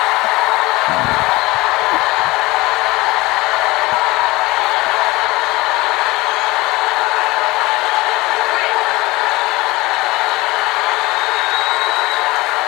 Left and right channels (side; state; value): right; quieter; 21.1 dB